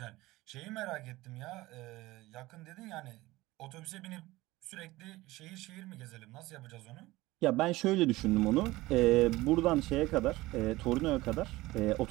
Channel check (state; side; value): quieter; left; 19.0 dB